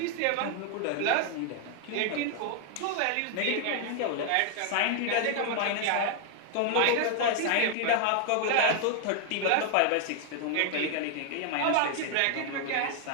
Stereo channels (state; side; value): different; both; correlation 0.00